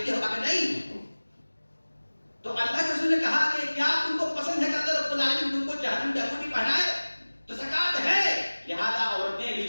ہو؟ کہا نہیں۔ تو اللہ کے رسول نے کہا کہ کیا تم کو پسند ہے کہ اللہ رب العالمین تم کو جہنم کی انگوٹھی پہنائے؟ تو زکات ہے۔ لہذا عورتیں بھی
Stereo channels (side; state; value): both; inverted; correlation -1.00